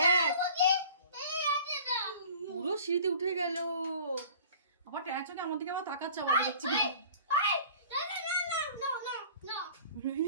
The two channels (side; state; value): both; inverted; correlation -0.46